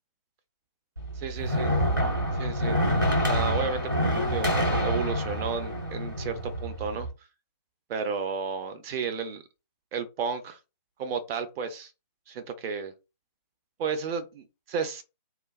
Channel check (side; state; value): both; inverted; correlation -0.38